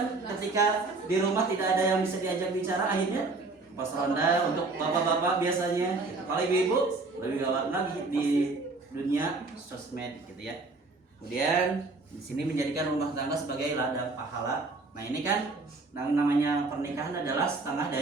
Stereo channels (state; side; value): quieter; left; 3.6 dB